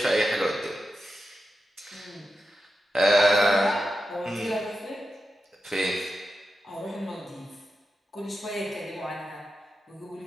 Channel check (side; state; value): both; normal; correlation 0.90